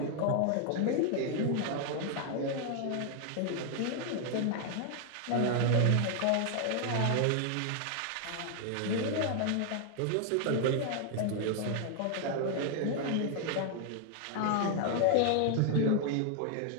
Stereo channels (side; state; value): both; different; correlation 0.00